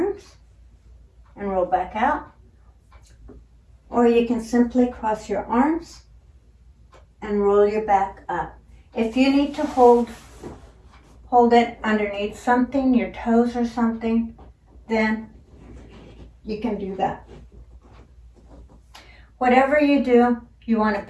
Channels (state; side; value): identical; both; correlation 1.00